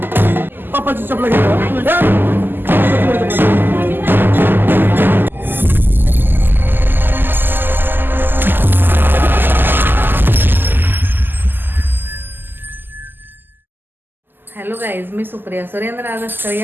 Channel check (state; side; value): late; left; 0.093 ms